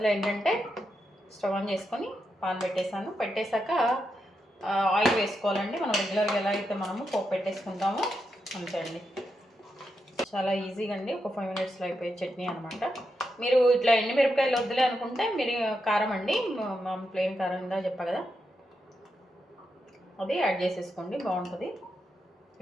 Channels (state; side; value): normal; both; correlation 0.85